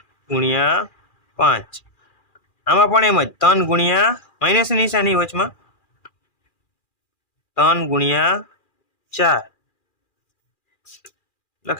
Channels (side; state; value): right; late; 2.4 ms